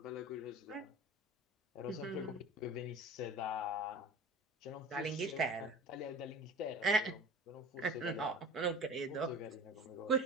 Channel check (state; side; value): normal; both; correlation 0.40